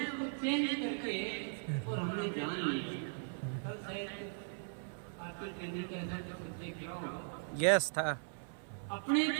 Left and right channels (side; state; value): left; silent; 52 dB below the other